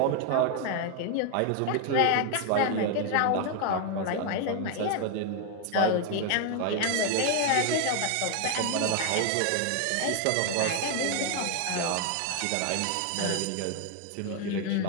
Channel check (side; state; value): both; different; correlation 0.00